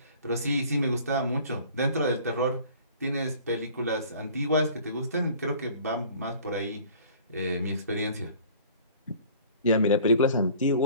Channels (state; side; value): inverted; both; correlation -0.49